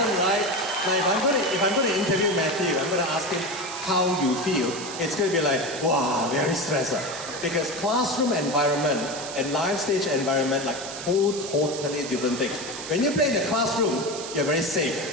right? Now, if I'm gonna interview Matthew, I'm gonna ask him how you feel. It's gonna be like, wow, very stressed. Because classroom environment and live stage environment, like totally different things. When you play in the classroom, you're very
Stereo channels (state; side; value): noise; right; hiss, 9 dB below the sound